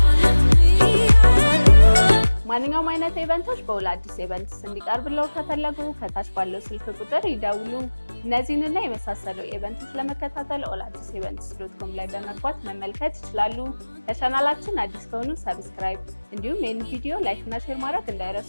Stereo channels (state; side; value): inverted; both; correlation -1.00